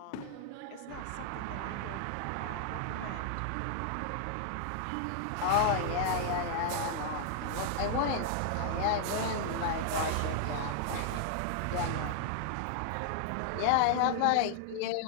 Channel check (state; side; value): different; both; correlation 0.00